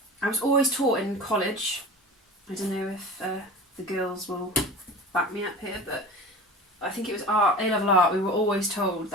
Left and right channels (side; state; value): both; normal; correlation 0.35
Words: was always taught in college, I don't know if the girls will back me up here, but I think it was A-level art, we were always told